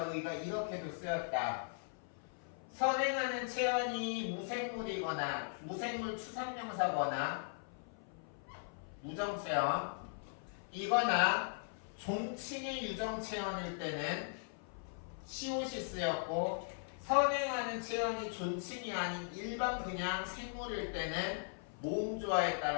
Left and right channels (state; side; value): silent; right; 52 dB below the other